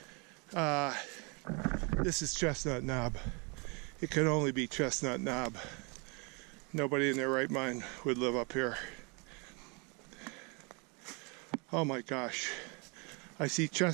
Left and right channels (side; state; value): left; quieter; 32.0 dB